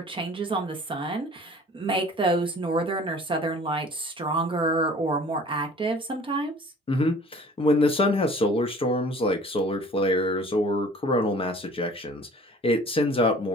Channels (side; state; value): both; normal; correlation 0.48